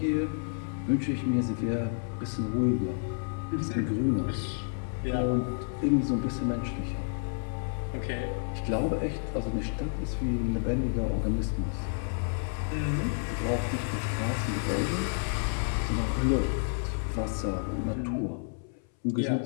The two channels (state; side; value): silent; right; 58 dB below the other